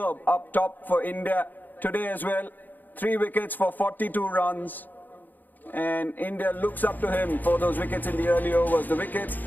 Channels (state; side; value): late; right; 0.086 ms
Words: up top for India today as well. 3 wickets for 42 runs. And India looks up to him for those wickets in the early overs. The wickets